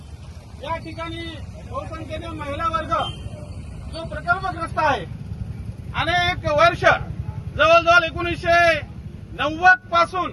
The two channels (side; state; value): both; identical; correlation 1.00